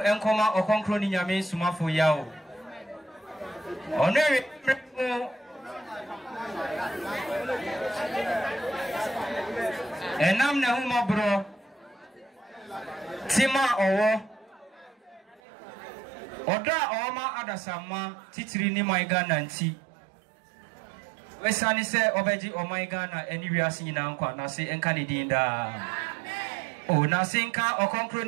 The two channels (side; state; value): left; drops out; at 15.4 s